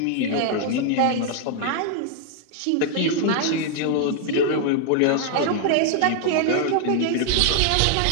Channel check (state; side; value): different; both; correlation 0.00